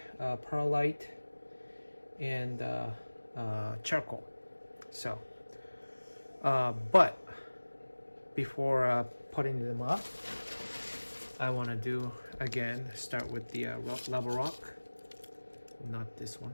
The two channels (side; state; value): both; inverted; correlation -1.00